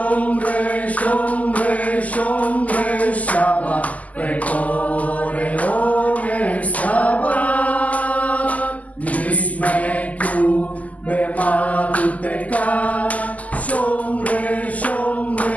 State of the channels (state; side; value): late; right; 0.075 ms